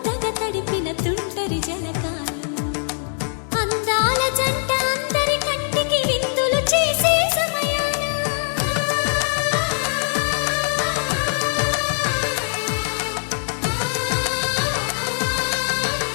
తడిపిన తుంటరి జలకాలు అందాల జంట అందరి కంటికి విందులు చేసే సమయాన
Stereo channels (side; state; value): right; silent; digital silence